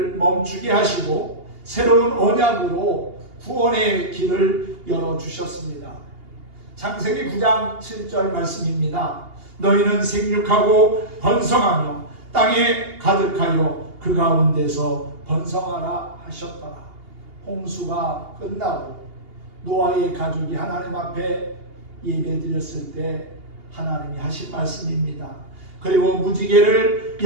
멈추게 하시고 새로운 언약으로 구원의 길을 열어주셨습니다. 창세기 9장 7절 말씀입니다. 너희는 생육하고 번성하며 땅에 가득하여 그 가운데서 번성하라 하셨더라. 홍수가 끝나고 노아의 가족이 하나님 앞에 예배드렸을 때 하나님이 하신 말씀입니다. 그리고 무지개를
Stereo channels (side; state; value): left; late; 2.8 ms